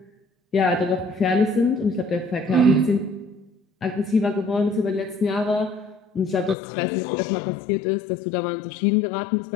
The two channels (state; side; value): drops out; right; at 6.6 s